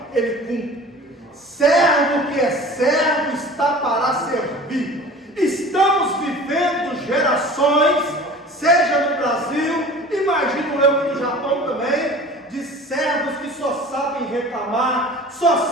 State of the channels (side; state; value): both; normal; correlation 0.42